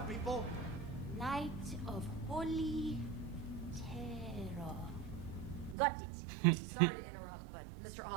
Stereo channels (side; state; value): left; drops out; at 5.8 s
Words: people. Night of Holy Terror. Got it. Sorry to interrupt, but Mr.